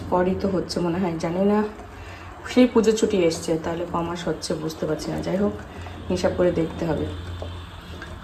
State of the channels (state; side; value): identical; both; correlation 1.00